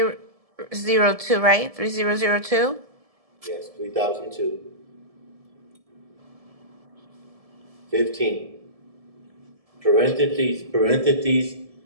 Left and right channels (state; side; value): late; left; 1.7 ms